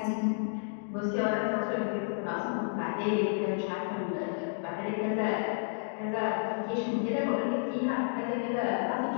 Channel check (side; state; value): right; silent; digital silence